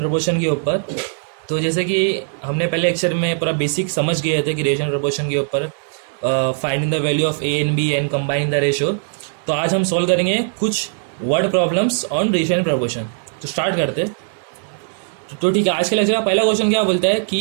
के ऊपर। तो जैसे कि हमने पहले लेक्चर में पूरा बेसिक समझ गए थे कि रेशियो एंड प्रोपोर्शन के ऊपर finding the value of A and B and combining the ratio. तो आज हम सॉल्व करेंगे कुछ word problems on ratio and proportion. तो स्टार्ट करते। तो ठीक है, आज के लेक्चर का पहला क्वेश्चन क्या बोलता है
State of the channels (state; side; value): silent; left; digital silence